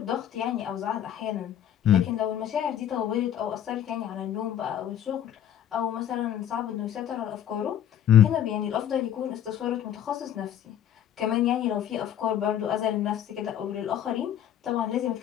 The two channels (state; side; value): quieter; right; 10.2 dB